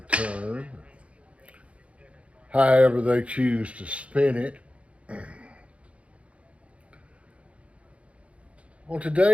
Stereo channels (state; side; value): late; left; 0.062 ms